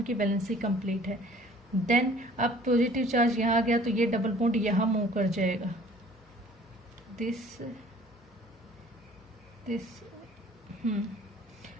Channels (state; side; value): normal; both; correlation 0.52